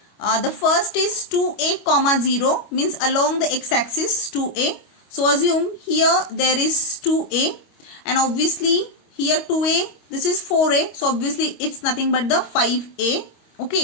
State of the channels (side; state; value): right; late; 25 ms